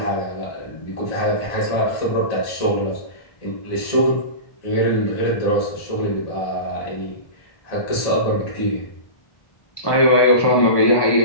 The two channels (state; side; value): late; right; 1.1 ms